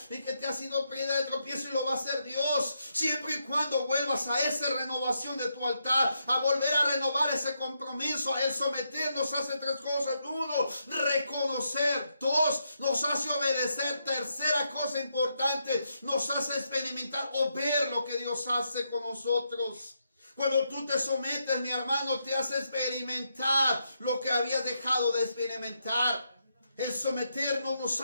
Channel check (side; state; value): both; inverted; correlation -0.81